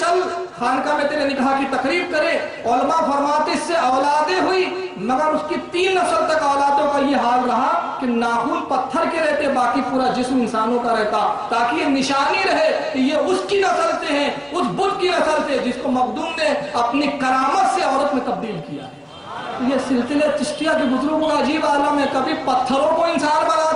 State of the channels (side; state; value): both; identical; correlation 1.00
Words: خانقاہ میں تیرے نکاح کی تقریب کرے. علماء فرماتے اس سے اولادیں ہوئی، مگر اس کی 3 نسل تک اولادوں کا یہ حال رہا کہ ناخن پتھر کے رہتے، باقی پورا جسم انسانوں کا رہتا، تاکہ یہ نشانی رہے کہ یہ اس کی نسل سے ہیں، اس بت کی نسل سے جس کو مخدوم نے اپنی کرامت سے عورت میں تبدیل کیا ہے. یہ سلسلے چشتیہ کے بزرگوں کا عجیب عالم ہے، کبھی پتھروں کو انسان